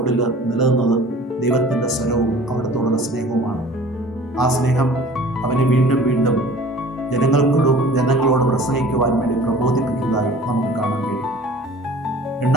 നിലനിന്നത് ദൈവത്തിൻ്റെ സ്വരവും അവിടത്തോടുള്ള സ്നേഹവുമാണ്. ആ സ്നേഹം അവനെ വീണ്ടും വീണ്ടും ജനങ്ങളോട് പ്രസംഗിക്കുവാൻ വേണ്ടി പ്രബോധിപ്പിക്കുന്നതായി നമുക്ക് കാണാൻ കഴിയും.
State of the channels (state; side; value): normal; both; correlation 0.46